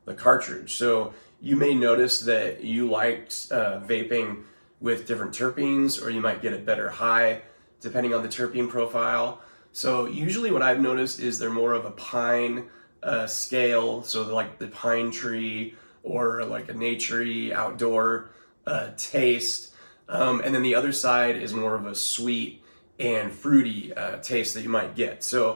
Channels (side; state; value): both; inverted; correlation -1.00